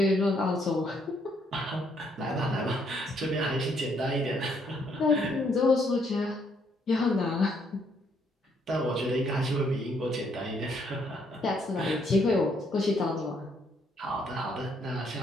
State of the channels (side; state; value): both; normal; correlation 0.70